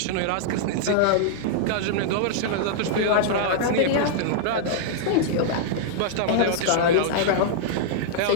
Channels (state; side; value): different; both; correlation -0.01